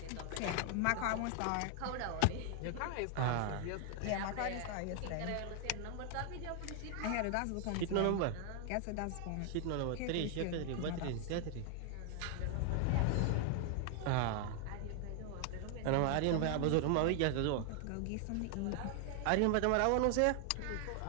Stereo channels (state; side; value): different; both; correlation 0.00